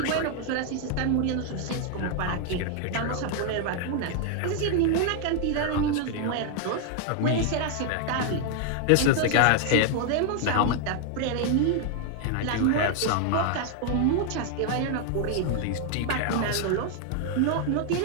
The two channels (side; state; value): both; different; correlation 0.00